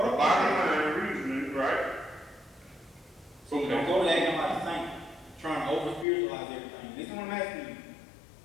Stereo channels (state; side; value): drops out; right; at 6.1 s